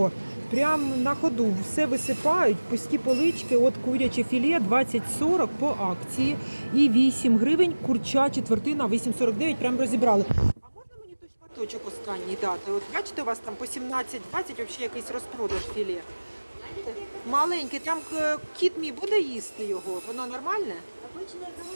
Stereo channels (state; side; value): inverted; both; correlation -1.00